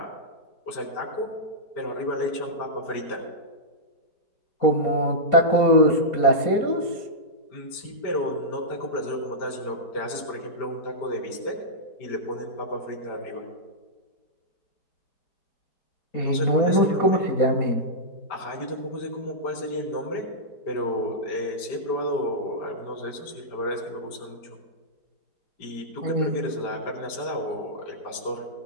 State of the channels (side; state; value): right; late; 4.3 ms